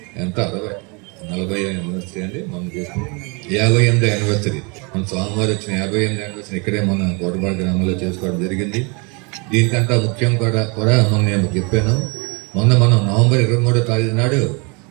ఎంత 40 యానివర్సరీ అండి మనం చేసుకున్నాం, 58వ యానివర్సరీ, మన స్వామివారు వచ్చిన 58వ యానివర్సరీ ఇక్కడే మన కోటపాడు గ్రామంలో చేసుకోవడం జరిగింది. దీనికంతా ముఖ్యం కూడా మనం నేను చెప్పాను, మొన్న మనం నవంబర్ 23వ తారీఖు నాడు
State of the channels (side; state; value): left; quieter; 31.2 dB